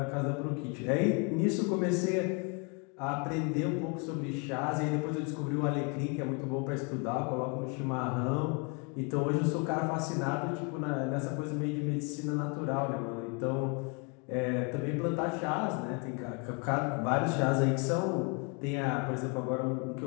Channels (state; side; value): quieter; right; 34.4 dB